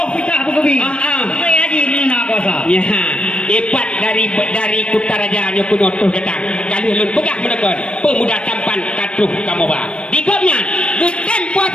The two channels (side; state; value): right; late; 0.058 ms